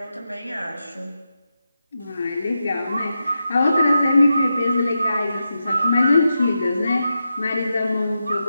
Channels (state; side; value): inverted; both; correlation -0.88